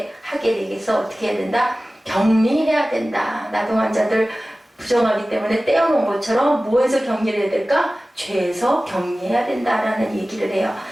되기 위해서 어떻게 해야 된다? 격리해야 된다. 나병 환자들 부정하기 때문에 떼어놓은 것처럼 뭐에서 격리를 해야 될까? 죄에서 격리해야 된다라는 얘기를 해요.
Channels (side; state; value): both; normal; correlation 0.97